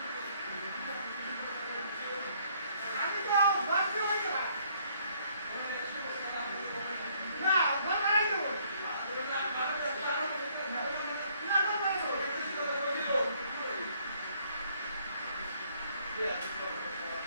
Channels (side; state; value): both; inverted; correlation -0.65